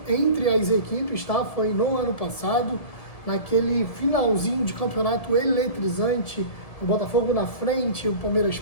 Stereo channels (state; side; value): late; right; 1.7 ms